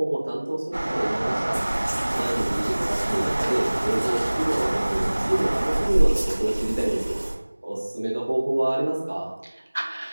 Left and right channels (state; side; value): inverted; both; correlation -1.00